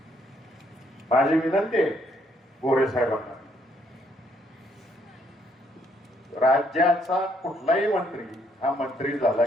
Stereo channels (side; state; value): both; normal; correlation 0.70